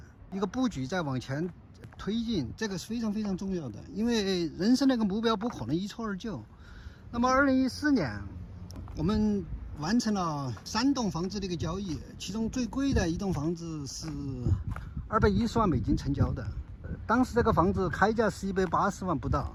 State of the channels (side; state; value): both; identical; correlation 1.00